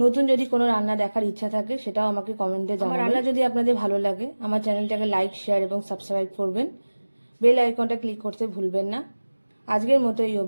যদি কোনো রান্না দেখার ইচ্ছা থাকে সেটাও আমাকে কমেন্টে জানাবেন। আমার রান্না যদি আপনাদের ভালো লাগে আমার চ্যানেলটাকে লাইক, শেয়ার এবং সাবস্ক্রাইব করবেন। বেল আইকনটা ক্লিক করতে ভুলবেন না। আজকের মতো এই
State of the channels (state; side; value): inverted; both; correlation -1.00